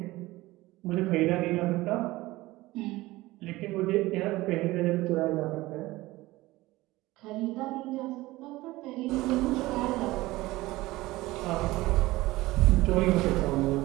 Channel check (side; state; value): left; quieter; 18.9 dB